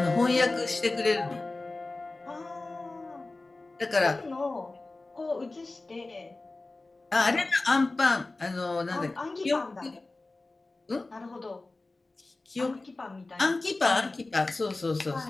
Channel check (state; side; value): quieter; right; 3.2 dB